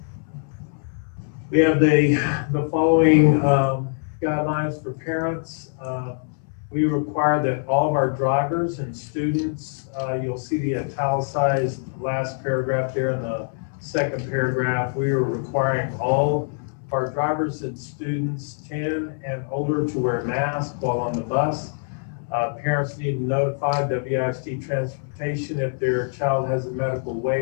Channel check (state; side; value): silent; right; 63 dB below the other